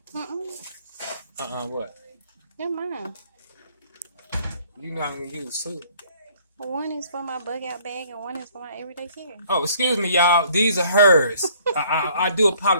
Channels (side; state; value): both; inverted; correlation -0.59